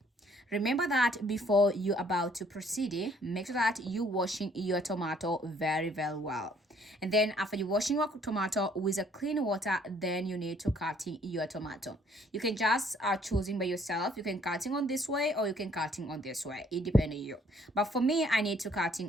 Remember that before you about to proceed, make sure that you washing your tomato very well. And then after you washing your tomato with a clean water, then you need to cutting your tomato. You can just choosing by yourself. You can cutting on this way or you can cutting on this way. It depends on you. But for me, I need to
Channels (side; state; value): both; normal; correlation 0.62